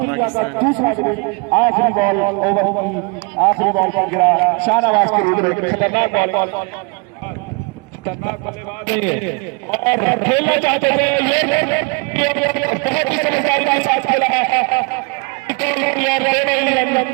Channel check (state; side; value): quieter; left; 31.6 dB